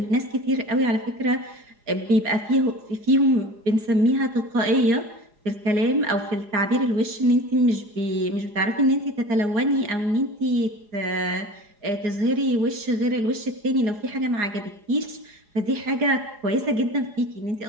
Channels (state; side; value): late; left; 4.8 ms